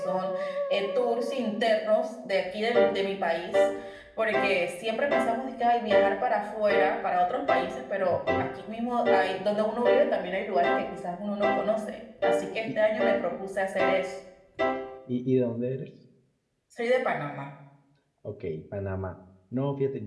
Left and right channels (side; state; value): both; identical; correlation 1.00